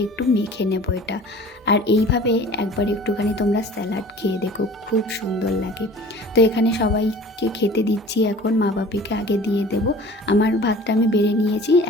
একটু মেখে নেবো এটা। আর এইভাবে একবার একটুখানি তোমরা স্যালাড খেয়ে দেখো, খুব সুন্দর লাগে। তো এখানে সবাইকে খেতে দিচ্ছি এখন, মা বাপিকে আগে দিয়ে দেবো। আমার ভাতটা আমি বেড়ে নিয়েছি,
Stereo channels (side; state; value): both; normal; correlation 0.44